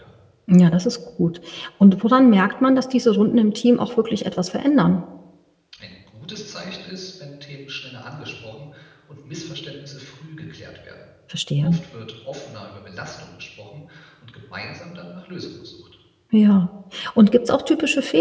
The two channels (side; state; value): both; identical; correlation 1.00